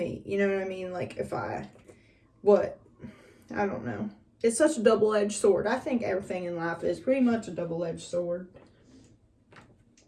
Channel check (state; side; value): identical; both; correlation 1.00